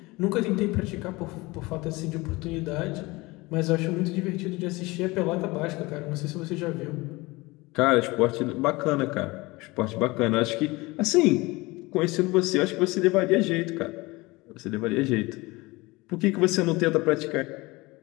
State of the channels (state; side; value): quieter; right; 22.6 dB